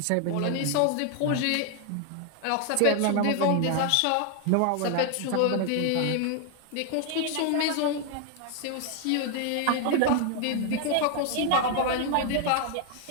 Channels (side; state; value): both; different; correlation 0.00